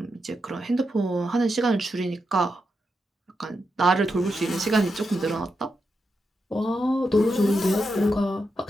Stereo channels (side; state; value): both; normal; correlation 0.86